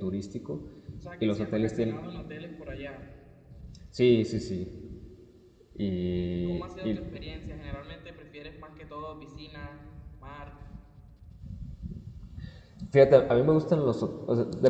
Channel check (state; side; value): identical; both; correlation 1.00